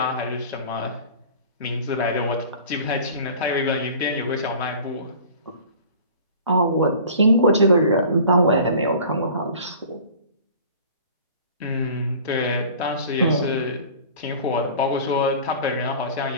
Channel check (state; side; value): inverted; both; correlation -0.43